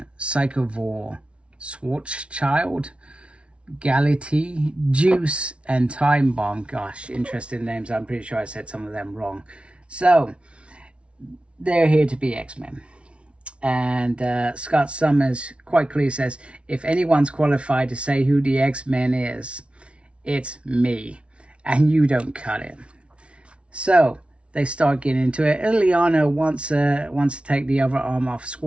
Psychovore, Schwarzschild, Galatea, Juice, and Time Bomb. Gosh, interesting names. I'm pretty sure I said some of them wrong. So they're here to be X-Men, and Scott Summers quite clearly says, if anyone's qualified to say who the X-Men is, it's me, and you don't cut it. So they start getting into it. Ileana wants to take the other arm off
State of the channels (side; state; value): left; late; 0.060 ms